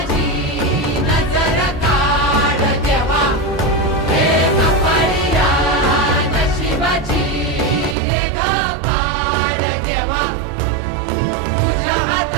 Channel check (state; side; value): drops out; left; at 8.0 s